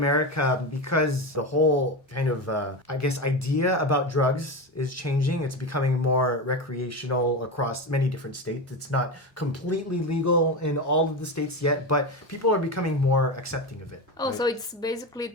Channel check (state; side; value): normal; both; correlation 0.19